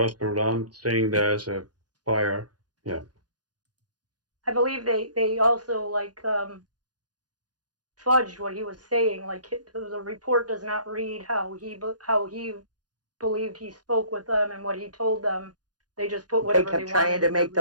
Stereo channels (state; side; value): late; left; 0.69 ms